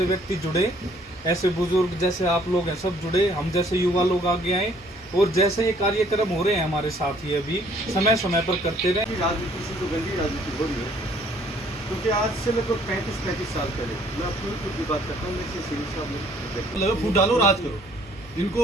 व्यक्ति जुड़े, ऐसे बुजुर्ग जैसे आप लोग हैं सब जुड़े, हम जैसे युवा लोग आगे आए, और जैसे ये कार्यक्रम हो रहे हैं हमारे साथ ही अभी समय समय पर करते रहे। राजनीति से जो गंदी राजनीति हो रही है, क्योंकि आज से लगभग 35 साल पहले मैं अपनी खुद की बात करता हूँ, मैं से सिंह साहब फूट डालो, राज करो, इनको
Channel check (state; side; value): normal; both; correlation 0.61